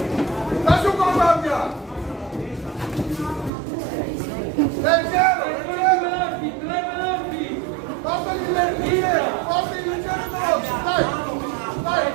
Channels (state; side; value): drops out; left; at 3.5 s